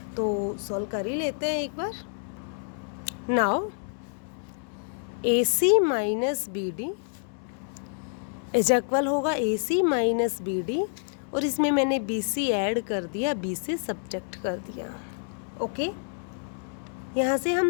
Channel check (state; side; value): silent; right; digital silence